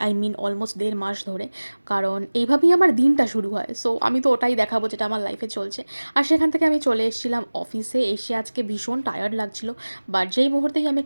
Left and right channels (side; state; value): both; inverted; correlation -1.00